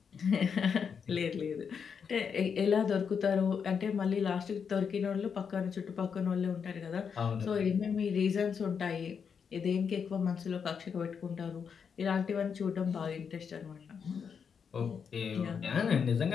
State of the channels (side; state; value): right; quieter; 6.6 dB